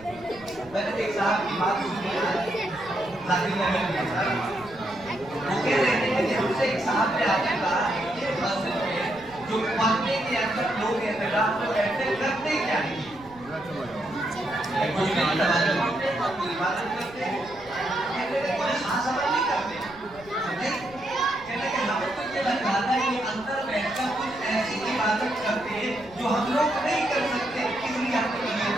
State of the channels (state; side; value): noise; right; rumble, 22 dB below the sound